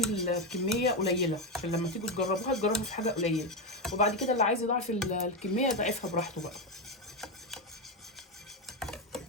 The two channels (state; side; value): normal; both; correlation 0.09